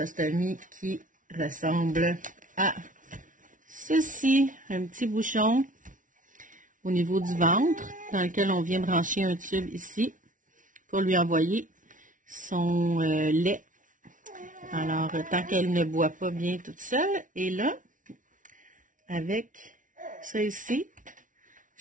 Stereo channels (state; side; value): late; left; 0.38 ms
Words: qui ressemble à ceci, un petit bouchon au niveau du ventre dans lequel on vient brancher un tube ici pour lui envoyer son lait. Alors, tant qu'elle ne boit pas bien toute seule, et là, avec ça ici,